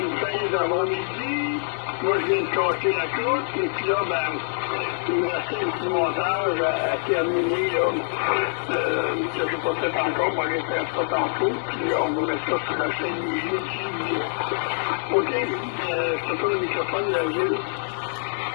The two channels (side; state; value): right; silent; digital silence